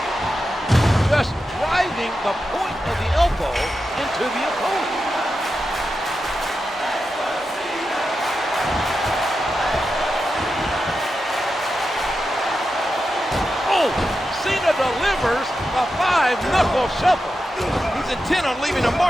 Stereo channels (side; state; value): both; normal; correlation 0.89